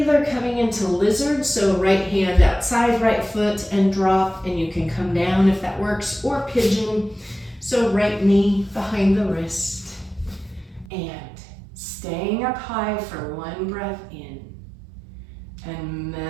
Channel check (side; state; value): left; drops out; at 10.9 s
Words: coming into lizard, so right hand outside, right foot, and drop, and you can come down if that works, or pigeon, so right knee behind the wrist. And staying up high for one breath in, and